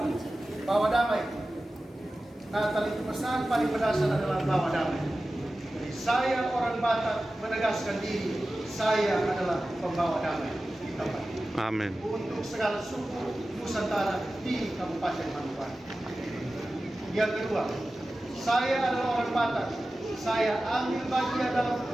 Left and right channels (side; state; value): both; normal; correlation 0.95